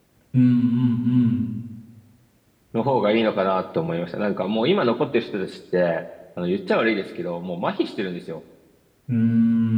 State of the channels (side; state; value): both; identical; correlation 1.00